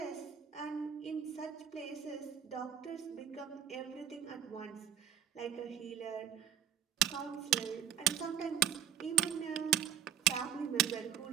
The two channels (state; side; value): quieter; left; 9.8 dB